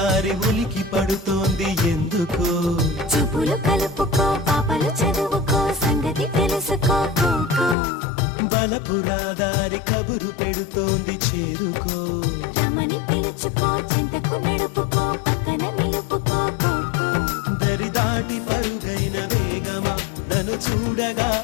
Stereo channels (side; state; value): right; drops out; at 7.8 s